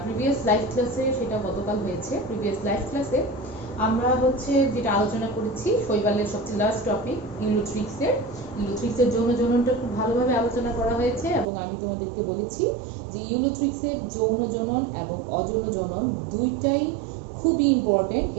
প্রিভিয়াস লাইভ ক্লাসে সেটা গতকাল হয়েছে। প্রিভিয়াস লাইভ ক্লাসে আমরা যেটা আলোচনা করেছি শৈবালের সবচেয়ে লাস্ট টপিক ইউলোথ্রিক্সের যৌন জননটা খুব ভালোভাবে আলোচনা করা হয়েছে এবং আমি তোমাদেরকে বলেছি যে ইউলোথ্রিক্সের যৌন জনন এবং অযৌন জনন দুইটাই খুবই ইম্পর্টেন্ট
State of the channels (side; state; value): left; drops out; at 11.5 s